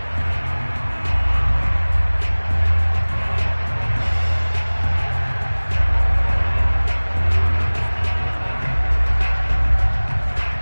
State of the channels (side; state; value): both; inverted; correlation -1.00